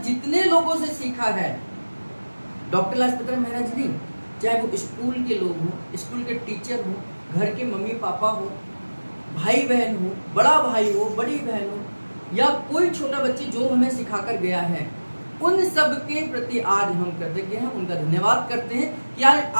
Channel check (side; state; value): both; inverted; correlation -1.00